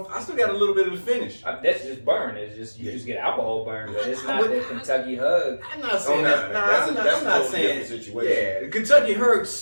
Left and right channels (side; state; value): both; inverted; correlation -1.00